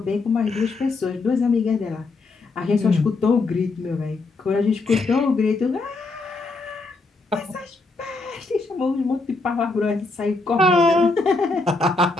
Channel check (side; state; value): right; quieter; 3.6 dB